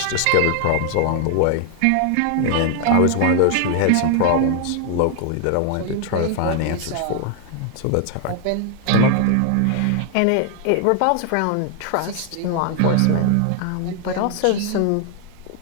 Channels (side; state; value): both; different; correlation 0.00